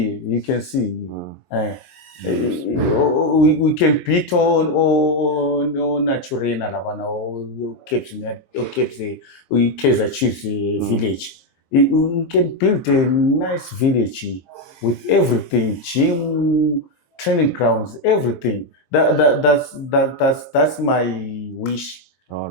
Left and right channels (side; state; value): right; late; 23 ms